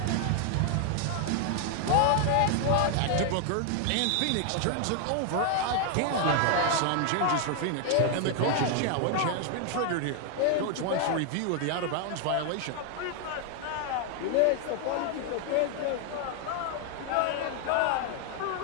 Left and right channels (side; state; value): both; different; correlation 0.00